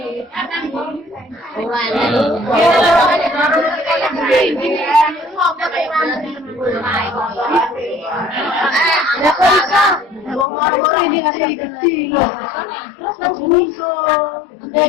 ini ngasih kecil loh. Terus langsung iso.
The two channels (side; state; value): right; drops out; at 10.5 s